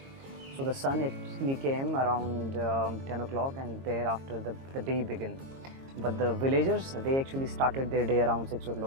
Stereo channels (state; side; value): late; left; 22 ms